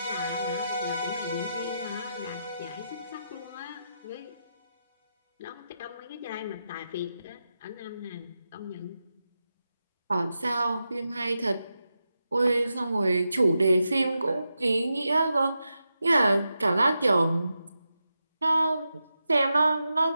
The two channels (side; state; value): both; inverted; correlation -0.88